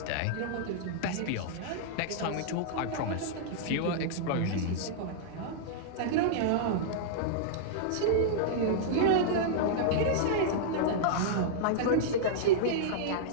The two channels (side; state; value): both; different; correlation -0.02